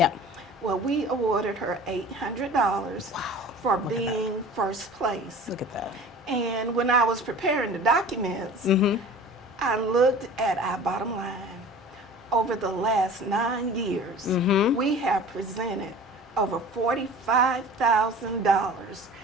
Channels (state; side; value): normal; both; correlation 0.41